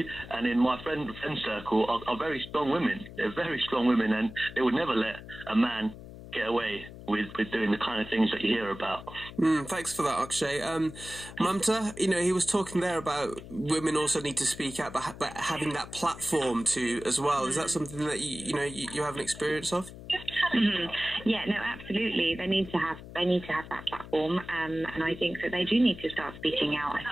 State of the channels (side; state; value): left; noise; hum, 14 dB below the sound